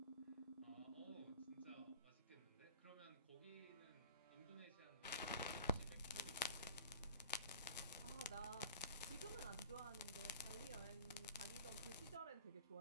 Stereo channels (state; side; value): inverted; both; correlation -0.43